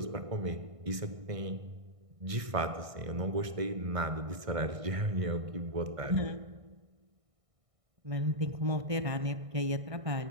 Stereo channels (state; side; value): late; left; 1.6 ms